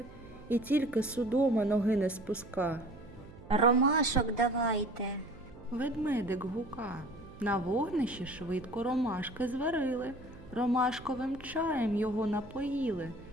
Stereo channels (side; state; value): right; noise; hum, 19 dB below the sound